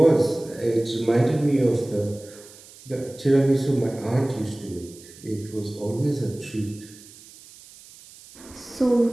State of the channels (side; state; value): right; noise; hiss, 21 dB below the sound